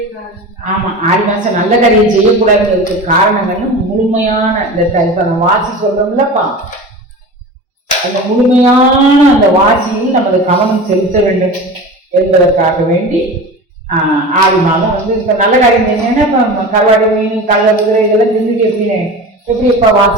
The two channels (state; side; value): normal; both; correlation 0.32